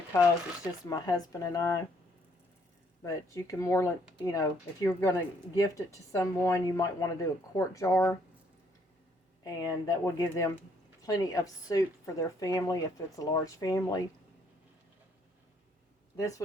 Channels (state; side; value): normal; both; correlation 0.67